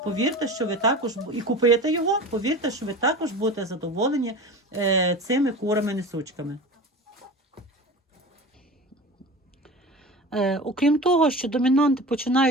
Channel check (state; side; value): normal; both; correlation 0.33